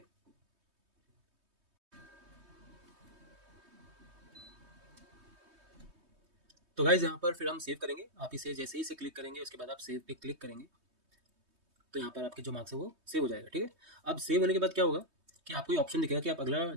तो गाइज यहाँ पर फिर हम सेव करेंगे। आप इसे जैसे ही इसे क्लिक करेंगे, उसके बाद आप सेव पे क्लिक करेंगे, तो यहाँ पर आपके जो मार्क्स है वो सेव हो जाएगा। ठीक है, अब सेव होने के बाद क्या होगा कि आपको ये ऑप्शन दिखेगा कि आप अगला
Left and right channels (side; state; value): left; late; 3.2 ms